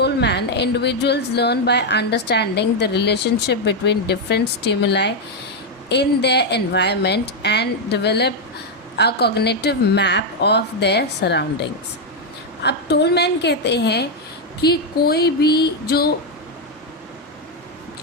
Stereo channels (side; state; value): both; normal; correlation 0.02